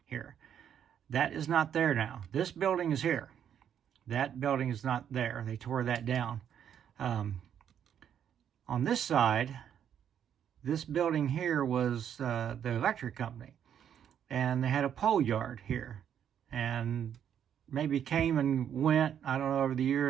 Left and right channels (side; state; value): left; quieter; 9.1 dB